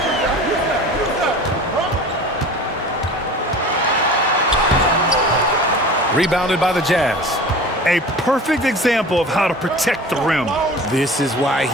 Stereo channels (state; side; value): normal; both; correlation 0.39